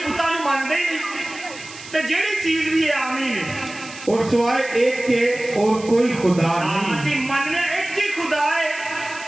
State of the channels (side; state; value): right; noise; hiss, 16 dB below the sound